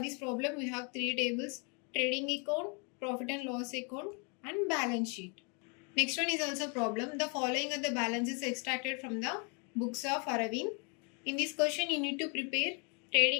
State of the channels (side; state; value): right; quieter; 34.9 dB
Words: problem, we have 3 tables: trading account, profit and loss account, and balance sheet. Next one is also problem. The following are the balances extracted from the books of Aravind. In this question, you need to prepare